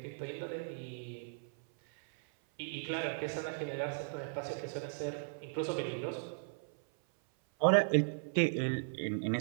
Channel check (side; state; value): left; silent; 53 dB below the other